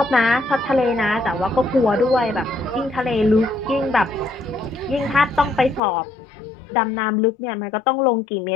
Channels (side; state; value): right; drops out; at 5.8 s